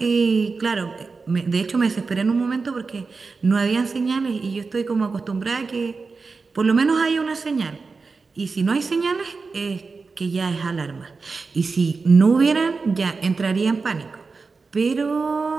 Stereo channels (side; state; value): left; quieter; 4.4 dB